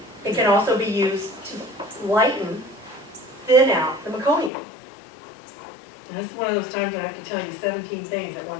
It can also be used to lighten, thin out the meconium. And this is one of those times when I have to tell you 17 things at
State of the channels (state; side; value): drops out; right; at 4.5 s